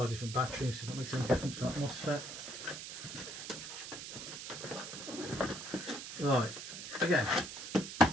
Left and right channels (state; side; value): noise; right; hiss, 9 dB below the sound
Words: different batteries, see if that makes any difference for that MOSFET. Right, again,